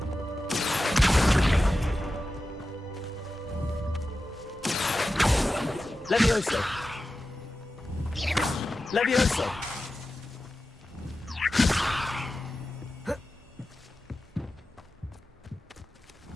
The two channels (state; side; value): normal; both; correlation 0.93